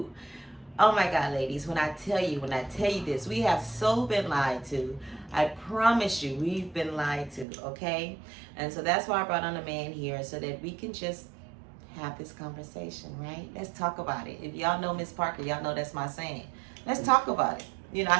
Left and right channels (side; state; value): left; drops out; at 7.5 s